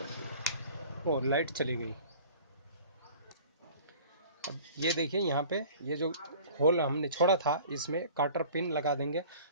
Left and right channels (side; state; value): both; inverted; correlation -0.46